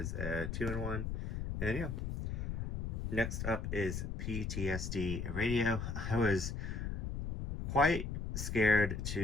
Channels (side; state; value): left; noise; rumble, 3 dB below the sound